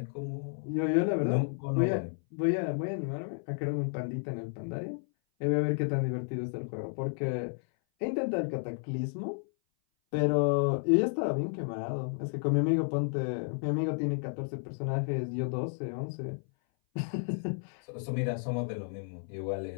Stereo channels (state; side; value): silent; right; 56 dB below the other